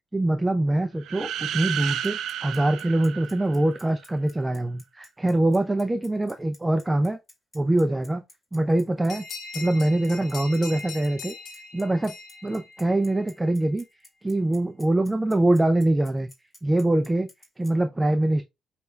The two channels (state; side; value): normal; both; correlation 0.98